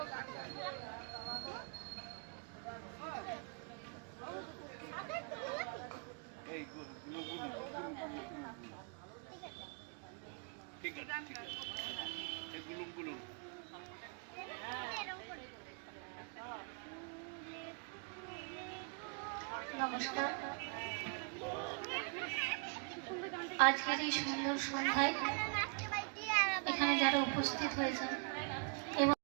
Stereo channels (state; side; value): quieter; left; 37.7 dB